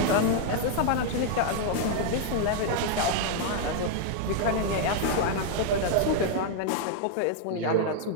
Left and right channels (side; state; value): both; different; correlation -0.01